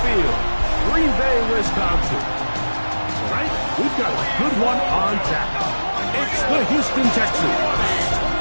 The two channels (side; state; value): both; inverted; correlation -1.00